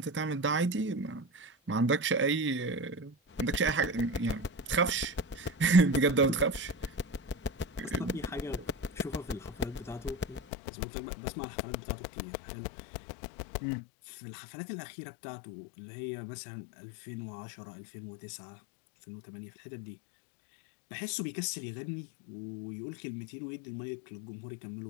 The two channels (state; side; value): drops out; right; at 10.4 s